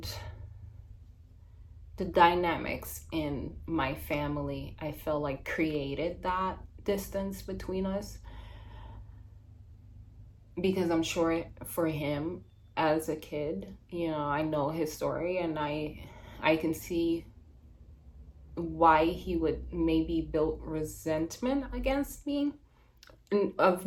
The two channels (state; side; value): identical; both; correlation 1.00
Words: the dynamics in my family, I feel like created that distance between us, because I'm sure for him as a kid, I know his story, and I can see why he would maybe build resentment against me, of